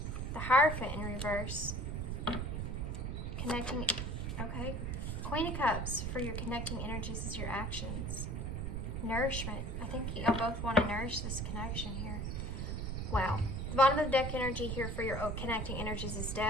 The Hierophant in reverse. Connecting, okay. Queen of Cups for your connecting energies is your actions. Nourishment. I think y'all both want to nourish this connection here. Wow. The bottom of the deck energy here for your connecting energies is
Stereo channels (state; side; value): noise; right; rumble, 2 dB below the sound